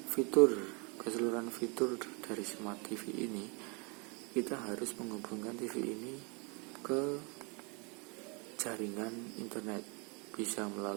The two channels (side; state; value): left; quieter; 31.8 dB